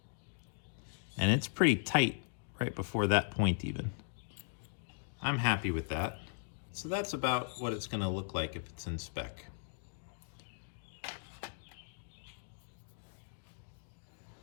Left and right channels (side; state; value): right; silent; digital silence